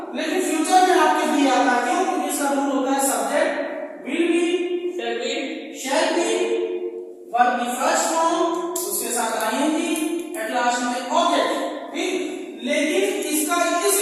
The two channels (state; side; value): identical; both; correlation 1.00